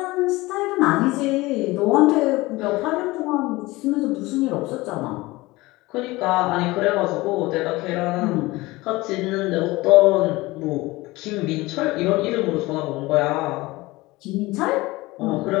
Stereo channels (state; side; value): quieter; right; 20.7 dB